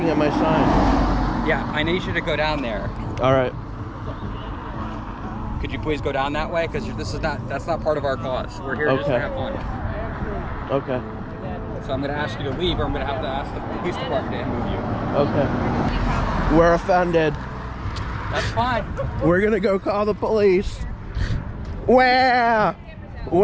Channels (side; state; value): both; identical; correlation 1.00